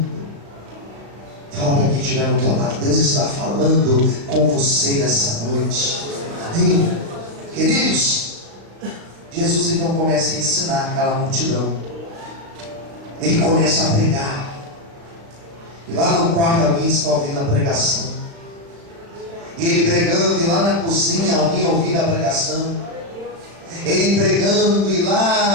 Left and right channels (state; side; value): late; left; 35 ms